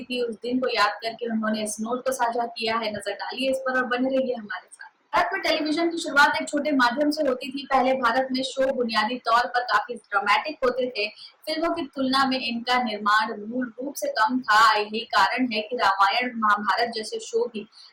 थी। उस दिन को याद करके उन्होंने इस नोट को साझा किया है। नजर डालिए इस पर और बने रहिए हमारे साथ। भारत में टेलीविजन की शुरुआत एक छोटे माध्यम से होती थी। पहले भारत में शो बुनियादी तौर पर काफी ड्रामेटिक होते थे। फिल्मों की तुलना में इनका निर्माण मूल रूप से कम था। यही कारण है कि रामायण महाभारत जैसे शो भी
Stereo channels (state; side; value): identical; both; correlation 1.00